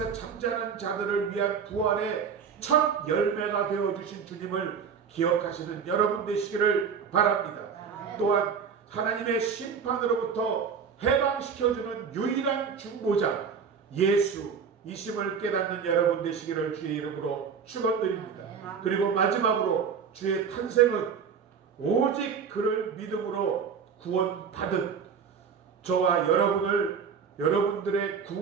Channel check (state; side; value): quieter; left; 6.5 dB